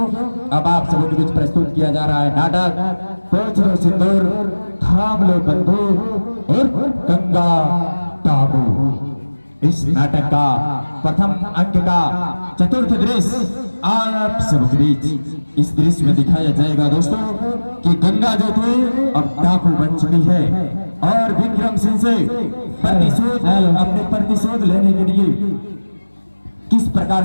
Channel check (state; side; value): inverted; both; correlation -1.00